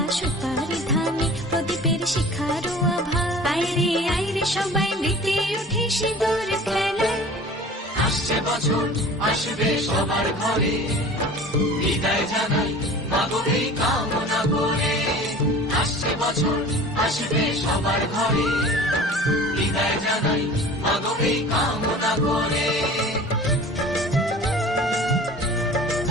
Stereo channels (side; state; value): both; normal; correlation 0.42